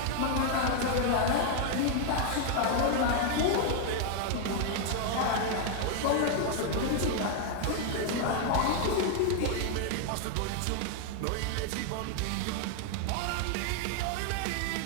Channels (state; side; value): different; both; correlation 0.00